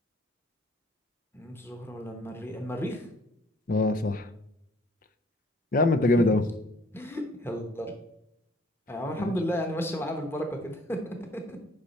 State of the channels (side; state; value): both; normal; correlation 0.57